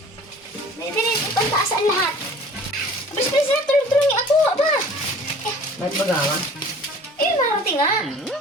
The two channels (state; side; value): normal; both; correlation 0.47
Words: Naidirin, ipantaas ang lahat. Bisbisi na, tulong-tulungi ako, aba. Ba't magawa? Eh, marating nga.